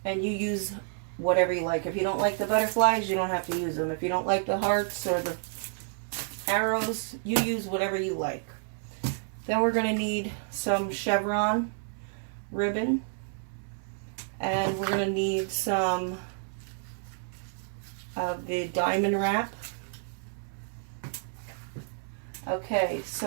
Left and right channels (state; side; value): silent; left; 58 dB below the other